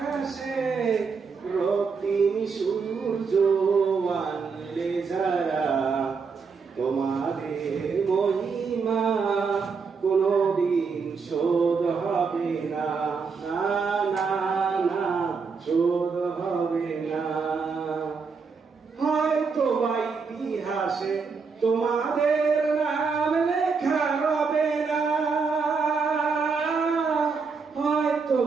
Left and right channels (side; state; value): left; quieter; 5.2 dB